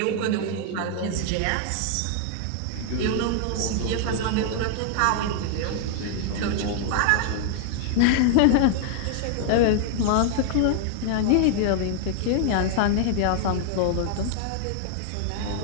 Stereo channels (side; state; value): both; different; correlation 0.00